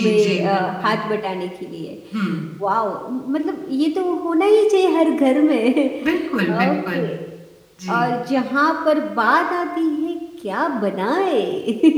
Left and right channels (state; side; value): identical; both; correlation 1.00